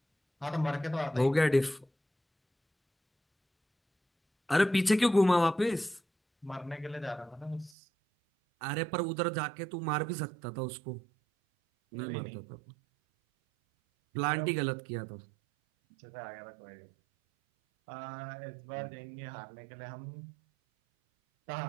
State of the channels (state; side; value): drops out; left; at 7.7 s